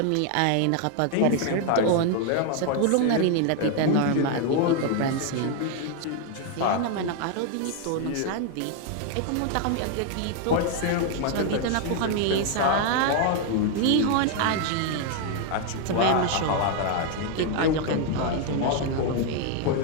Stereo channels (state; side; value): different; both; correlation 0.00